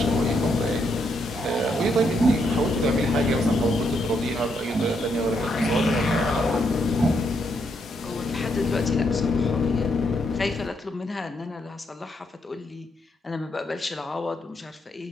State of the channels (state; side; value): normal; both; correlation 0.77